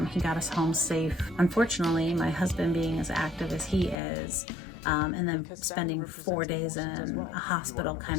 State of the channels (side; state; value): right; drops out; at 4.0 s